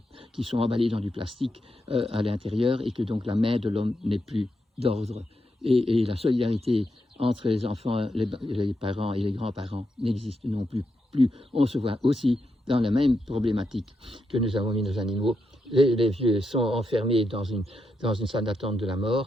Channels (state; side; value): normal; both; correlation 0.84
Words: qui sont emballés dans du plastique à l'intérieur, et que donc la main de l'homme n'est plus d'ordre. Et la solidarité entre les enfants, les parents et les grands-parents n'existe non plus. On se voit aussi dans la même problématique que nous avons mis nos animaux. Les vieux sont enfermés dans une salle d'attente de la